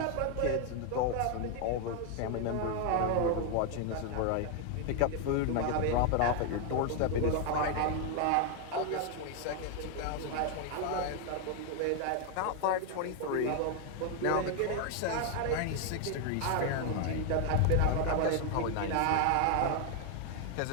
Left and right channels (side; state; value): both; different; correlation 0.01